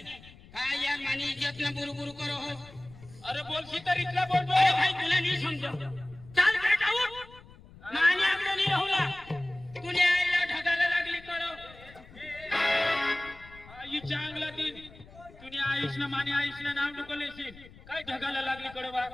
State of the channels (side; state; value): left; noise; rumble, 21 dB below the sound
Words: अरे बोलशी तर इथला बोलतो भाई तुला नाही समजो चाल काय जाऊ माने आपलं नाही राहुला तुने आईला ढगाला लागली करो आई चांगला दिन तुने आयुषना माने आयुषना नाव नको लेशील काय ढगाला लागली करो बा